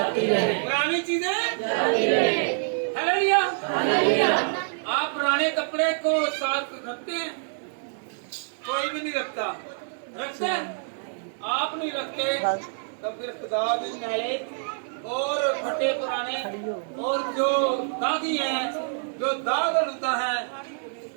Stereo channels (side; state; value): left; silent; digital silence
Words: है। पुरानी चीजें। हालेलुया। आप पुराने कपड़े को साथ रखते हैं? कोई भी नहीं रखता। रखते हैं? आप नहीं रखते तो फिर खुदा भी मैले और फटे पुराने और जो दागी हैं, जो दाग लुता है,